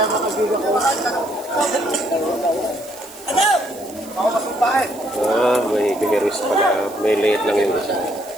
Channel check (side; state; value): right; noise; hiss, 20 dB below the sound